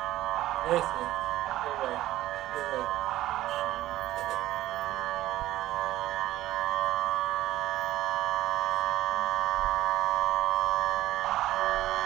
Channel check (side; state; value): left; quieter; 14.8 dB